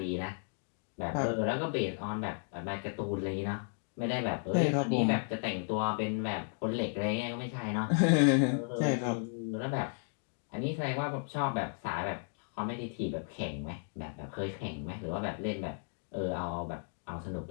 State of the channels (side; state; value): right; silent; 55 dB below the other